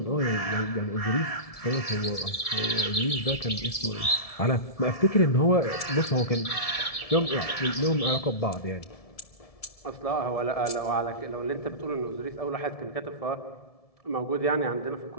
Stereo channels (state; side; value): late; right; 1.7 ms